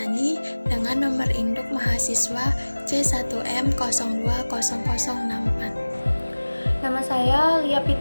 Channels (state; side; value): inverted; both; correlation -1.00